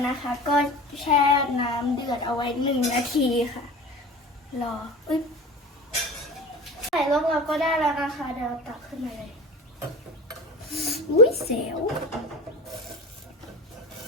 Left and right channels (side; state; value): both; normal; correlation 0.34